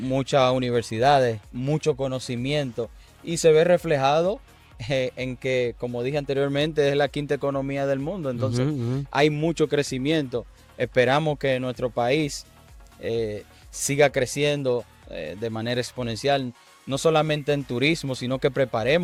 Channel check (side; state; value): both; identical; correlation 1.00